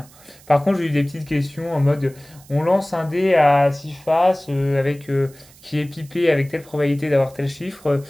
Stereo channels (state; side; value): noise; right; hiss, 25 dB below the sound